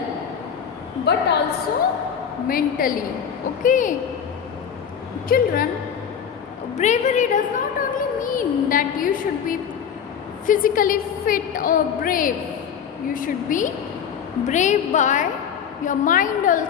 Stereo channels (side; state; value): right; quieter; 7.8 dB